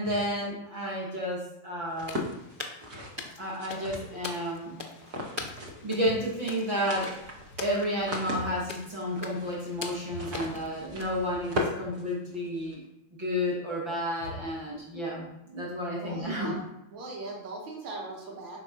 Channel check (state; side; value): late; left; 5.9 ms